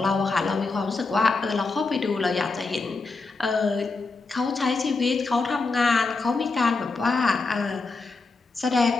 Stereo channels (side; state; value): right; quieter; 3.9 dB